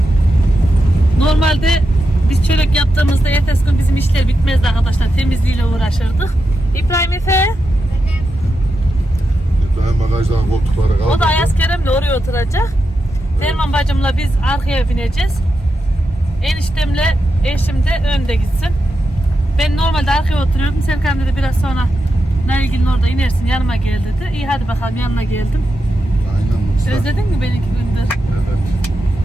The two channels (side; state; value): both; normal; correlation 0.88